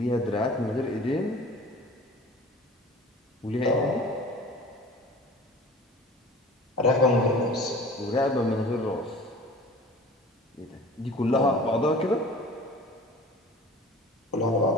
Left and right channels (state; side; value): normal; both; correlation 0.43